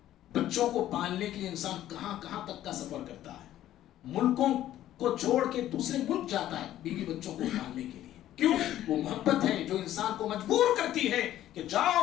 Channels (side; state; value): right; quieter; 12.9 dB